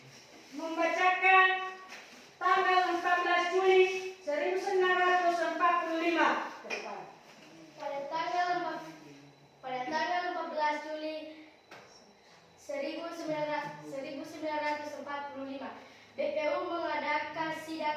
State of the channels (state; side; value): identical; both; correlation 1.00